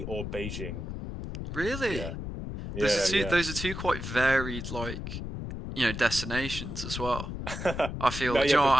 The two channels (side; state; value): left; noise; rumble, 6 dB below the sound